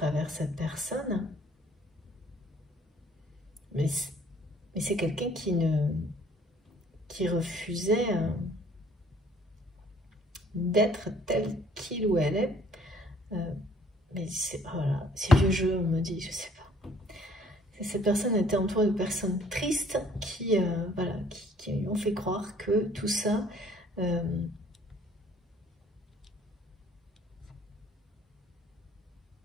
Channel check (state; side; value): normal; both; correlation 0.58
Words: cette personne. Mais c'est quelqu'un qui refusait d'être tel qu'il ou elle est. Mais voilà, c'est vieux jeu, on me dit, je sais pas. Cette personne était entourée de personnes tristes qui, voilà, qui lui ont fait croire que tout ça